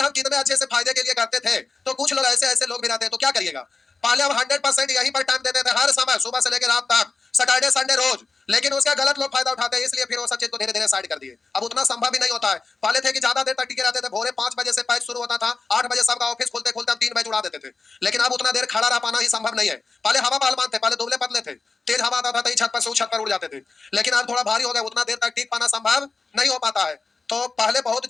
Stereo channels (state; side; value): quieter; right; 4.2 dB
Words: हम कितने अच्छे से फायदे के लिए करते थे, तो कुछ लोग ऐसे ऐसे लोग भी रहते हैं, तो क्या करिएगा। पहले हम 100% यहीं पर टाइम देते थे, हर समय सुबह से लेकर रात तक, सैटरडे संडे रोज, लेकिन उसका गलत लोग फायदा उठाते हैं, इसलिए फिर वो सब चीज को धीरे धीरे साइड कर दिए। अब उतना संभव भी नहीं होता है। पहले थे कि ज्यादा देर तक टिके रहते थे, भोरे 5 बजे से पैच शुरू होता था, 8 बजे सबका ऑफिस खोलते खोलते हम 3 बजे उड़ा देते थे, लेकिन अब उतना देर खड़ा रह पाना ही संभव नहीं है। पहले हवा पहलवान थे, पहले दुबले पतले थे, तेज हवा आता था तो छत पर से उस छत पर उड़ जाते थे, लेकिन अब थोड़ा भारी हो गया, उतना देर तक टिक पाना संभव नहीं हो पाता है। तो पहले बहुत